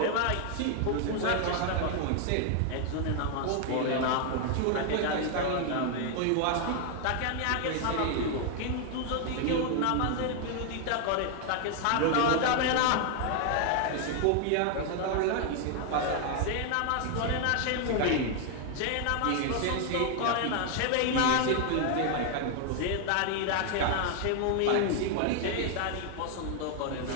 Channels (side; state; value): both; different; correlation 0.00